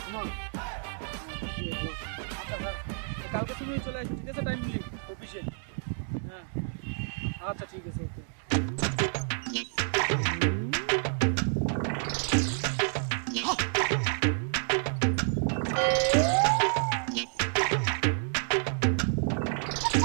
আচ্ছা হ্যাঁ, কালকে তুমি চলে আসো ঠিক আছে? টাইমলি অফিসে। হ্যাঁ আচ্ছা ঠিক আছে, ওকে।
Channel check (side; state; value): left; silent; 58 dB below the other